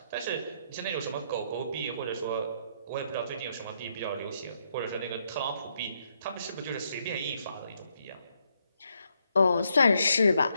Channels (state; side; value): inverted; both; correlation -0.76